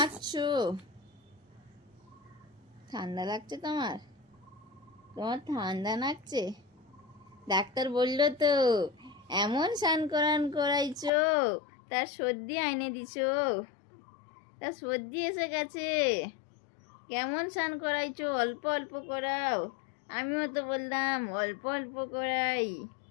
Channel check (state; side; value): drops out; right; at 11.1 s